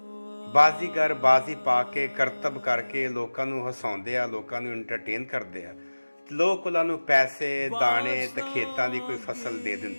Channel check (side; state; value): both; inverted; correlation -1.00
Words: ਬਾਜ਼ੀਗਰ ਬਾਜ਼ੀ ਪਾ ਕੇ ਕਰਤੱਵ ਕਰਕੇ ਲੋਕਾਂ ਨੂੰ ਹਸਾਉਂਦੇ ਆ, ਲੋਕਾਂ ਨੂੰ ਐਂਟਰਟੇਨ ਕਰਦੇ ਆ। ਲੋਕ ਉਹਨਾਂ ਨੂੰ ਪੈਸੇ ਦਾਣੇ ਤੇ ਖੇਤਾਂ ਦੀ ਕੋਈ ਫਸਲ ਦੇ